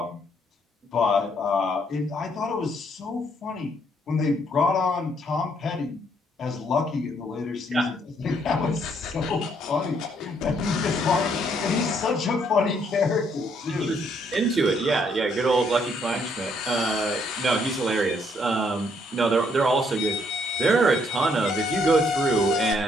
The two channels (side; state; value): both; normal; correlation 0.69